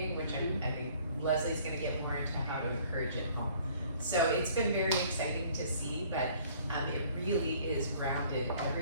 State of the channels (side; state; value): both; inverted; correlation -0.56